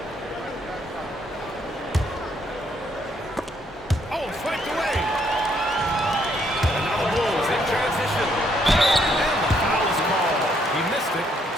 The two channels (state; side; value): normal; both; correlation 0.71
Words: Oh, flanked away. And now the Bulls in transition. And the foul is called. He missed it,